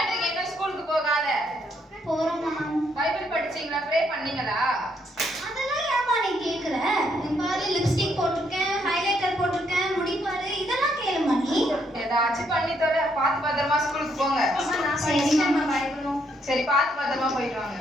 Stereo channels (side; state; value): both; normal; correlation 0.73